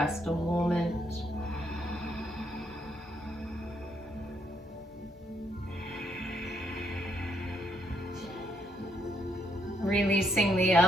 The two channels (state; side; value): normal; both; correlation 0.74